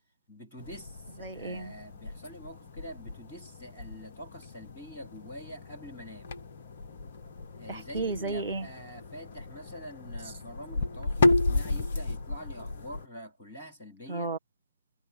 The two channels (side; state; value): both; inverted; correlation -0.81